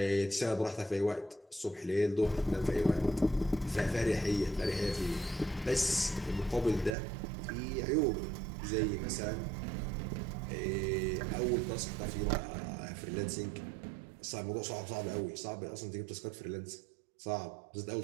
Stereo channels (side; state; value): left; drops out; at 7.0 s